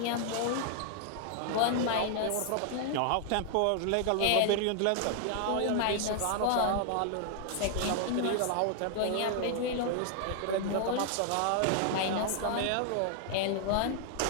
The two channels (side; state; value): both; different; correlation 0.00